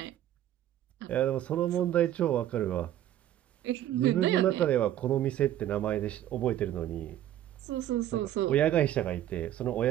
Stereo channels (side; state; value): left; quieter; 12.3 dB